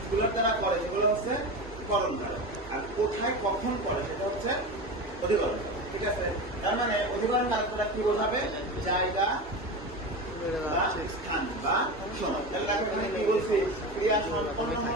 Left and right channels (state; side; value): normal; both; correlation 0.25